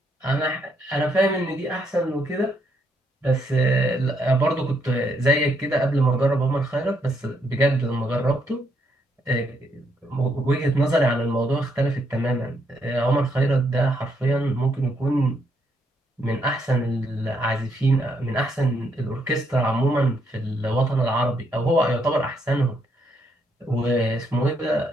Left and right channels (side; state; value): both; normal; correlation 0.75